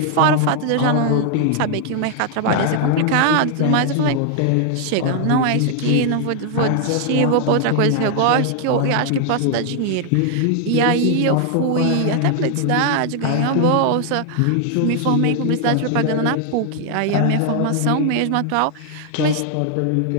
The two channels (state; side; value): different; both; correlation 0.00